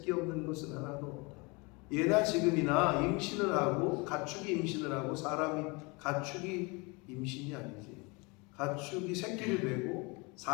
없는 것은 하나도 없다. 예나 지금이나 임신을 하고 가축이 임신을 하고 가축이 임신이 아니지, 가축이 새끼를 베고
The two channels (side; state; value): right; quieter; 28.2 dB